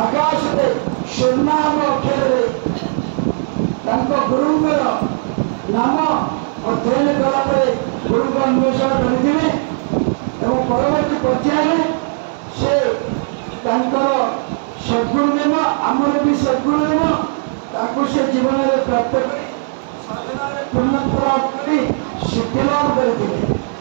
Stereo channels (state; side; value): silent; left; 68 dB below the other